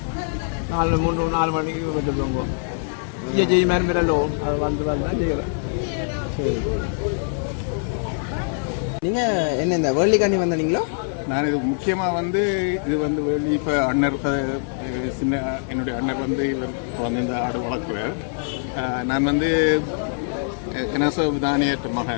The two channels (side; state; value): right; silent; 56 dB below the other